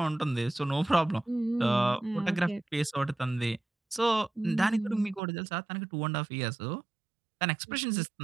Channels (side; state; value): left; drops out; at 5.2 s